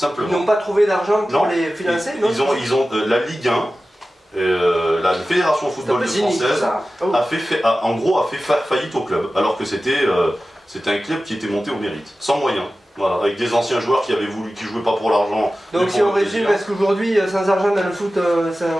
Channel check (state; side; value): normal; both; correlation 0.95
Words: Ils n'ont pas trouvé d'argent pour Non, les financer, non? ils ont la Ligue 1, la Fédération Football Française, a fait faillite au club, alors que c'était un club qui était monté au mérite, sans moyens. Voilà, avec des anciens joueurs qui jouaient pas pour l'argent. Donc si on résume, est-ce qu'aujourd'hui, sans argent dans le foot,